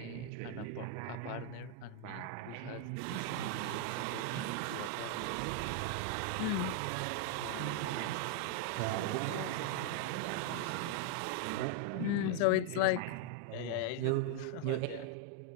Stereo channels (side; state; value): both; different; correlation 0.00